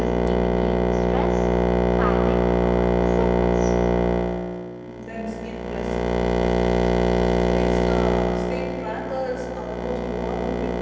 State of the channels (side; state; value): both; identical; correlation 1.00